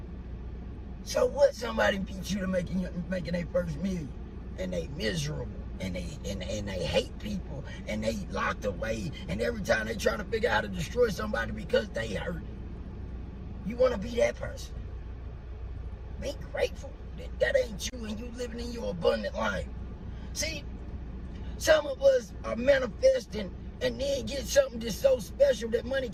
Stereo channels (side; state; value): both; identical; correlation 1.00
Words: So what? Somebody beat you to making their first million and they miserable. and they hate people, and they locked away, and every time they trying to figure out how to destroy somebody because they hurt. You want to be that person. Be grateful that ain't you, and you living in your abundant life. See, some of us are manifesting and then get something that's so special that money